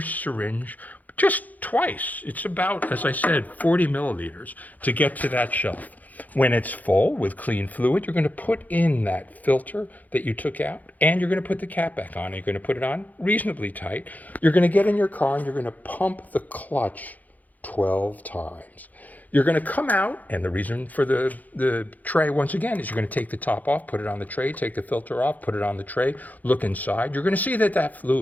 just twice. It's about, as I said, 40 milliliters to get to that shelf. When it's full with clean fluid, you're going to put in that filter that you took out and you're going to put the cap back on. You're going to put it on reasonably tight. You're going to get in your car and you're going to pump the clutch 12 times. You're going to come out, and the reason for the tray, once again, is you're going to take the top off, put it on the tray, take the filter off, put it on the tray, look inside. You're going to see that that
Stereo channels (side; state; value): right; late; 0.080 ms